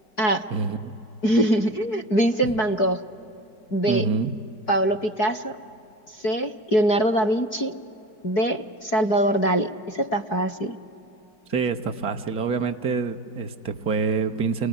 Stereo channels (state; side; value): late; right; 4.6 ms